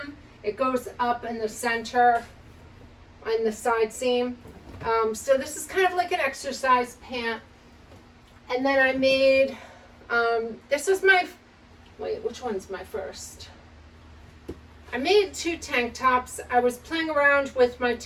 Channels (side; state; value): both; identical; correlation 1.00